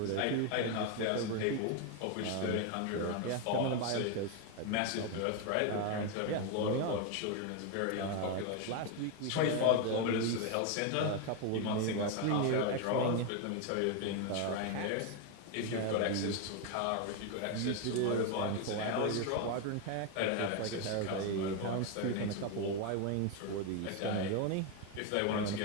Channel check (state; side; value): different; both; correlation 0.02